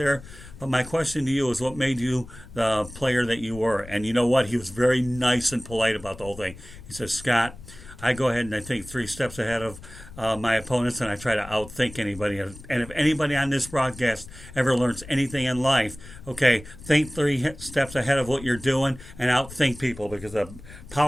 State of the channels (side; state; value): left; noise; rumble, 17 dB below the sound